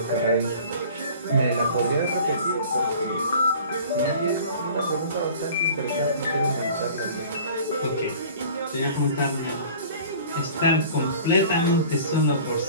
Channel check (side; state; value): both; inverted; correlation -0.45